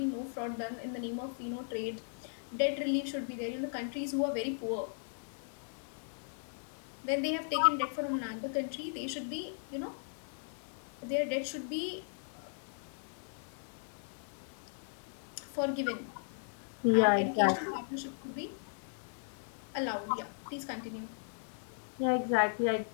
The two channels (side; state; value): right; silent; 53 dB below the other